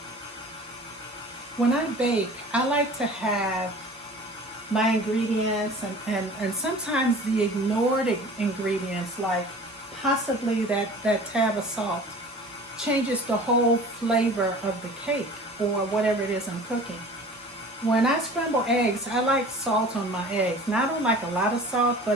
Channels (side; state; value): both; normal; correlation 0.43